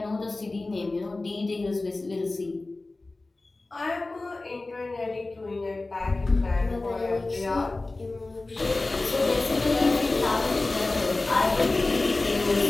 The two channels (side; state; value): right; quieter; 3.2 dB